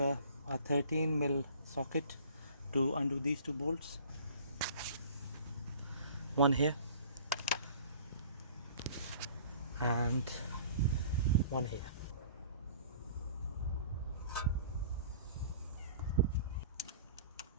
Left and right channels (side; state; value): both; inverted; correlation -0.48